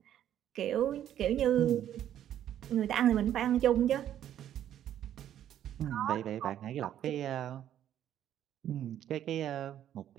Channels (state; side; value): quieter; left; 11.0 dB